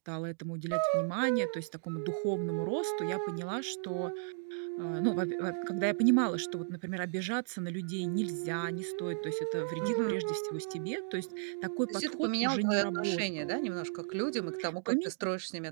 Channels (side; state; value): left; silent; digital silence